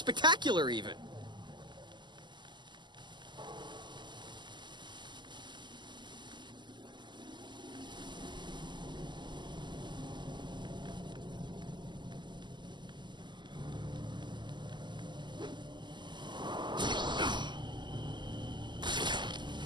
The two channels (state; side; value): late; left; 0.22 ms